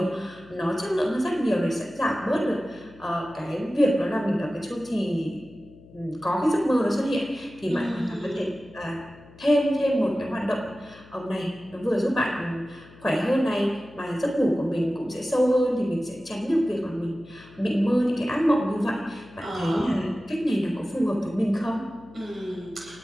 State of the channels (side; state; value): left; noise; hum, 22 dB below the sound